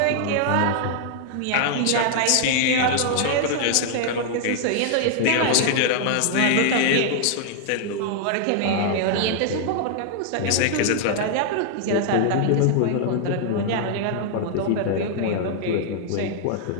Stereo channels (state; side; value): different; both; correlation 0.00